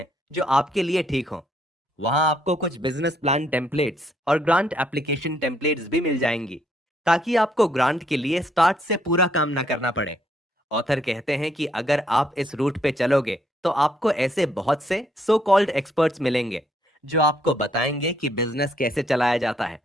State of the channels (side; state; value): both; normal; correlation 0.71